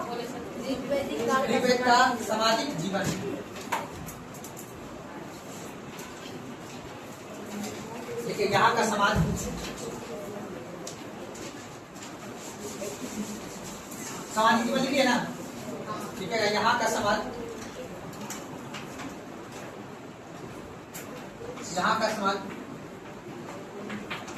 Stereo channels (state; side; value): identical; both; correlation 1.00